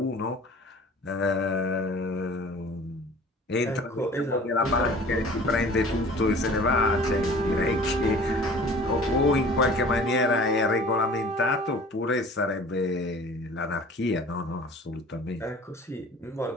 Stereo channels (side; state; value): both; normal; correlation 0.46